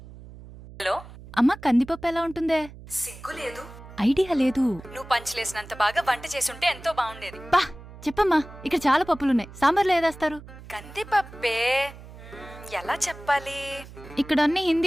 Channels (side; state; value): right; noise; hum, 17 dB below the sound